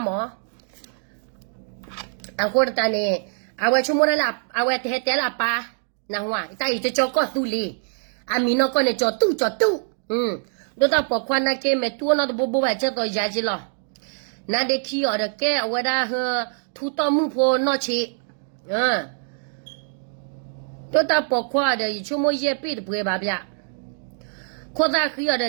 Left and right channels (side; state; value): left; silent; 63 dB below the other